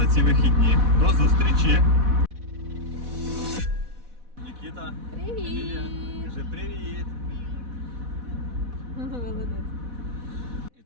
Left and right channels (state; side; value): late; left; 4.1 ms